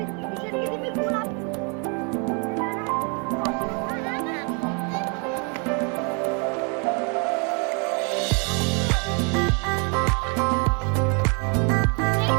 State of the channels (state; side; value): quieter; left; 36.0 dB